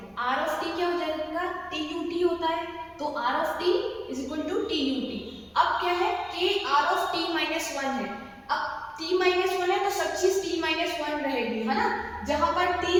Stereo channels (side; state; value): both; identical; correlation 1.00